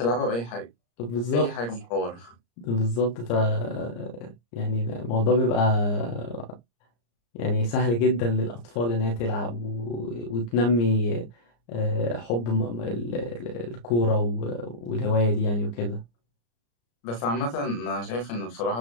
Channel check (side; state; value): right; late; 34 ms